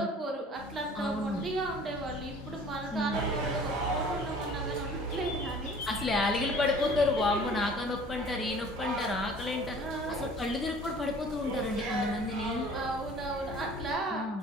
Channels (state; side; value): normal; both; correlation 0.49